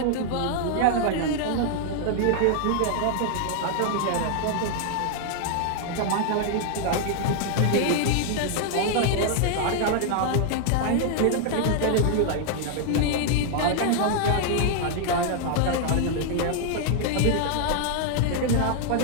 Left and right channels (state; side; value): different; both; correlation 0.00